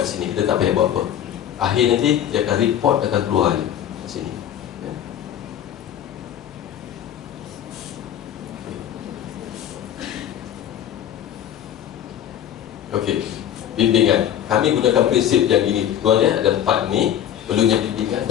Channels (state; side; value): quieter; right; 10.4 dB